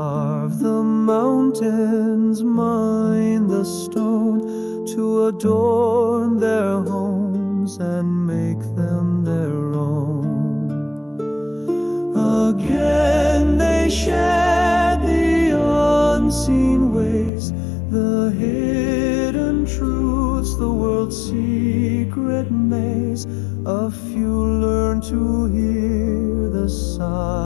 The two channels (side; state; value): right; drops out; at 17.3 s